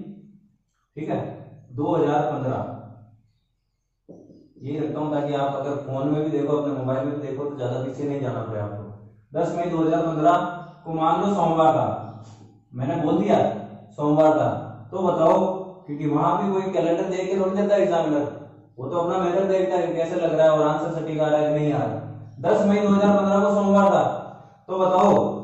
ठीक है, 2015 ये रखता हूं ताकि आप अगर फोन में भी देखो, अपने मोबाइल में भी देखो तो ज्यादा पीछे नहीं जाना पड़े आपको। 10 मई 2015 को मान लो सोमवार था, मैंने बोल दिया सोमवार था, तो बताओ, क्योंकि वहां भी कोई कैलेंडर देख के थोड़ी देता है एग्जामिनर, वो तो अपना मेथड देखता है कैसे लग रहा है और आंसर सटीक आ रहा है कि नहीं आ रहा है। 10 मई 2015 को सोमवार था, तो बताओ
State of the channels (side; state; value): both; identical; correlation 1.00